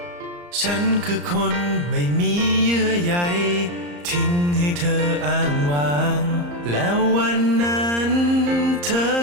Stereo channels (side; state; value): left; late; 34 ms